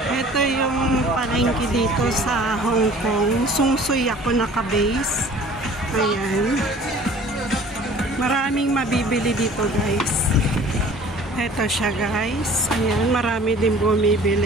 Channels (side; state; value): both; normal; correlation 0.49